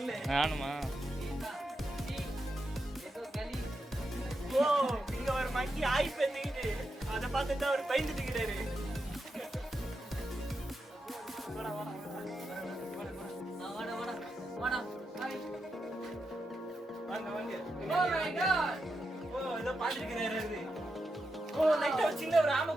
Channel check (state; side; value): normal; both; correlation 0.87